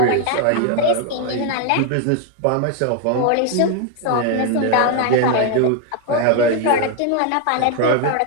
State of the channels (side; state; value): both; different; correlation 0.01